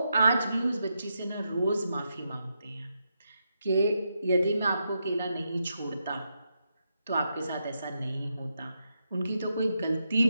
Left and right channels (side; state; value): both; inverted; correlation -0.84